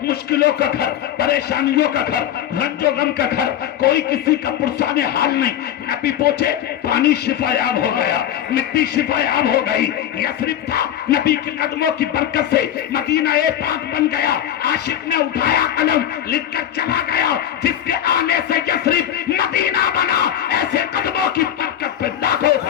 مشکلوں کا گھر، پریشانیوں کا گھر، رنج و غم کا گھر، کوئی کسی کا پرسان حال نہیں۔ نبی پہنچے، پانی شفا یاب ہو گیا، مٹی شفا یاب ہو گئی۔ یثرب تھا، نبی کے قدموں کی برکت سے مدینہ پاک بن گیا۔ عاشق نے اٹھایا قلم، لکھ کر چلا گیا، جس کے آنے سے یثرب مدینہ بنا، ایسے قدموں کی برکت پہ لاکھوں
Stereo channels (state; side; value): quieter; right; 10.8 dB